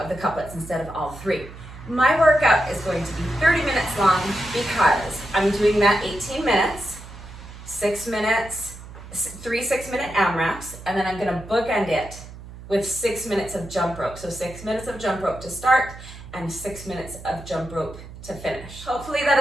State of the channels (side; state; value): right; noise; hum, 15 dB below the sound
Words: the couplets instead of all 3. My workout is going to be 30 minutes long because I'm doing that 18 minutes, 6 minutes, 3 6-minute AMRAPs, and then I'm gonna bookend it with 6 minutes of jump rope. So 6 minutes of jump rope to start and 6 minutes of jump rope to finish. Hopefully that